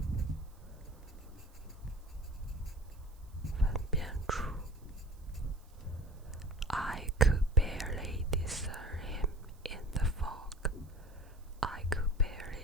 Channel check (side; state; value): right; noise; hiss, 29 dB below the sound